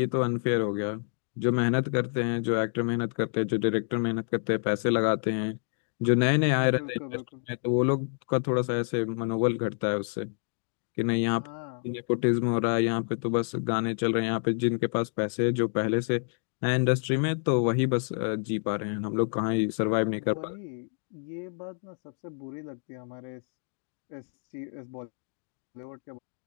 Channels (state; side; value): silent; right; digital silence